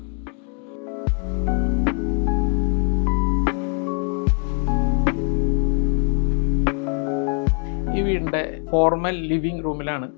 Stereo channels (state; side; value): quieter; right; 37.7 dB